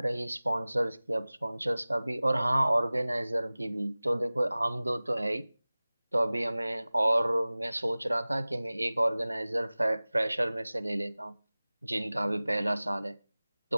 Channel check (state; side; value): inverted; both; correlation -0.98